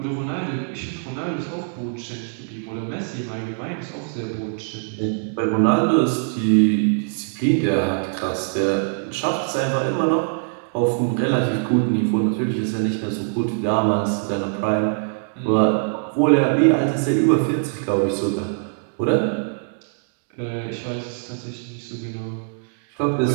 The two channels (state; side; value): silent; left; 63 dB below the other